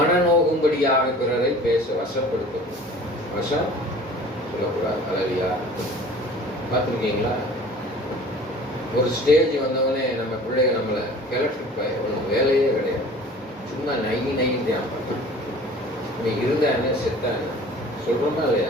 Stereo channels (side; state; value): both; normal; correlation 0.45